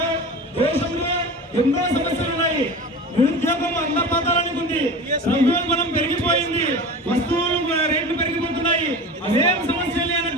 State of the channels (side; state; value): both; normal; correlation 0.32